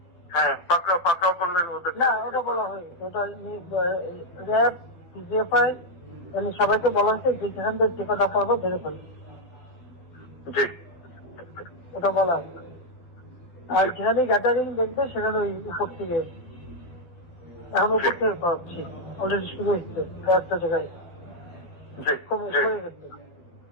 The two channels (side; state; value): right; late; 12 ms